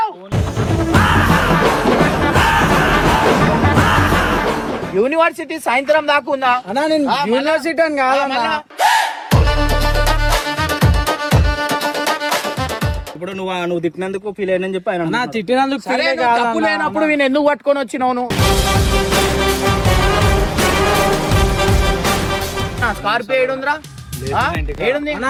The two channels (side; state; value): both; identical; correlation 1.00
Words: యూనివర్సిటీ సాయంత్రం దాకా ఉందా అన్నా? నేను యూనివర్సిటీ అని కాదన్నా. ఇప్పుడు నువ్వు తిట్టినందుకు ఫీల్ అయినని చెప్పి ఆయన తిట్టినందుకు తప్పు లేనప్పుడు నేను ఎందుకు పట్టుకొని వచ్చినావు? స్కార్పియో ఏడుందిరా? ఏడుంది?